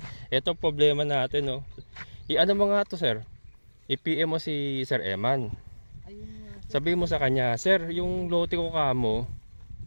Ito problema natin, no. I-ano mo nga to, sir? I-PM mo si Sir Eman. Ayun nga. Sabihin mo sa kanya, sir, yung lote ko kamo,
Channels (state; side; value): inverted; both; correlation -1.00